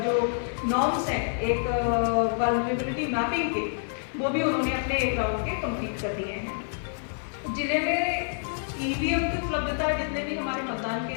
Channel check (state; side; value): silent; right; 57 dB below the other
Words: जो नॉर्म्स हैं एक वल्नरेबिलिटी मैपिंग के, वो भी उन्होंने अपने 1 राउंड के कंप्लीट कर दिए हैं। जिले में ईवीएम की उपलब्धता, जितने भी हमारे मतदान